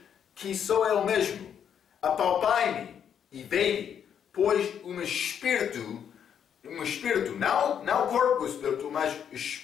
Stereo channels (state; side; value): quieter; right; 8.4 dB